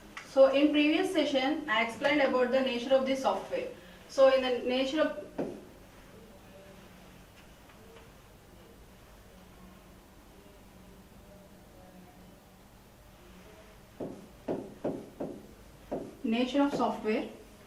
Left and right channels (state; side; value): identical; both; correlation 1.00